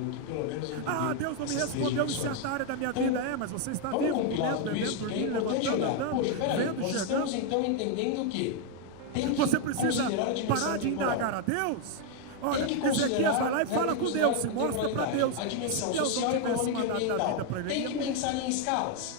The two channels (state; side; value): different; both; correlation 0.01